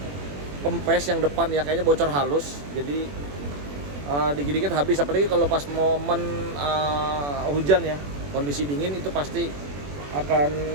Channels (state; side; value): late; left; 21 ms